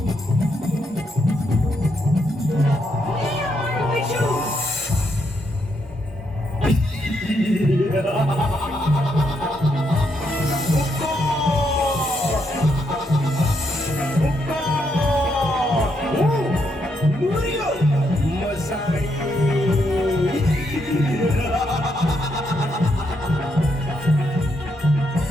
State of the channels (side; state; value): both; normal; correlation 0.78